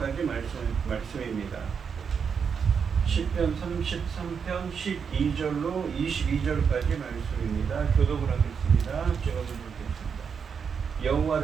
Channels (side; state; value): left; quieter; 6.5 dB